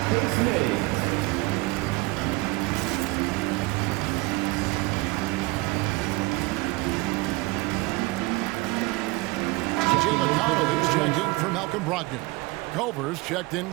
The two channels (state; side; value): quieter; left; 23.4 dB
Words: face mates. T.J. McConnell is checked in for Malcolm Brogdon. Culver's checked in